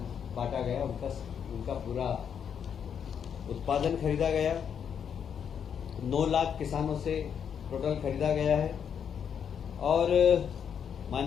बांटा गया। उनका पूरा उत्पादन खरीदा गया। 9 लाख किसानों से टोटल खरीदा गया है। और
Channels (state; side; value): quieter; right; 7.8 dB